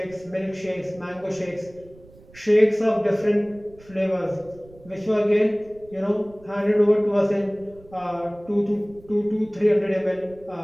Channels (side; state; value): right; noise; rumble, 24 dB below the sound